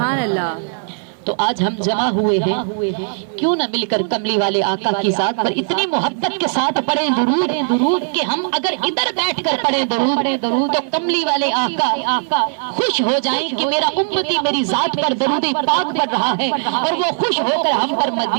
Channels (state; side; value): silent; left; 57 dB below the other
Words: اللہ۔ تو آج ہم جمع ہوئے ہیں، کیوں نہ مل کر کملی والے آقا کی ذات پر اتنی محبت کے ساتھ پڑھیں درود کہ ہم اگر ادھر بیٹھ کر پڑھیں درود تو کملی والے آقا خوش ہو جائیں کہ میرا امتی میری ذات پر درود پاک پڑھ رہا ہے، اور وہ خوش ہو کر ہم پر